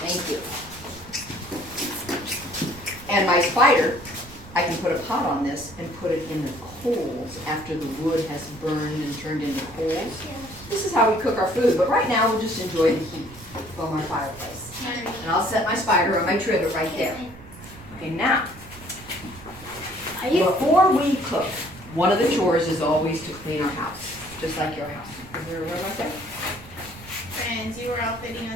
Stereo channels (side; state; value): right; noise; rumble, 18 dB below the sound